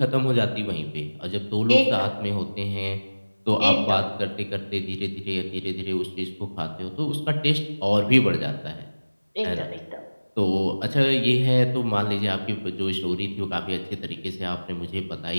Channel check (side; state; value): both; inverted; correlation -1.00